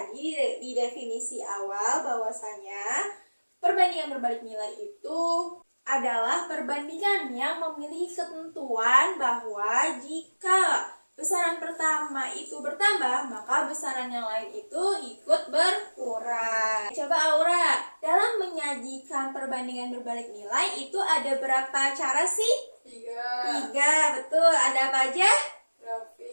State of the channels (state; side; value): inverted; both; correlation -1.00